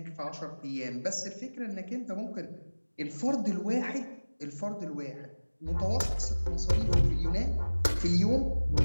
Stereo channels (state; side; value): inverted; both; correlation -1.00